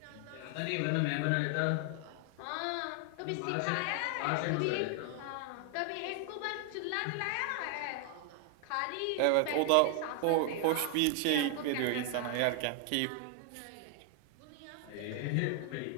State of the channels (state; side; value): different; both; correlation 0.00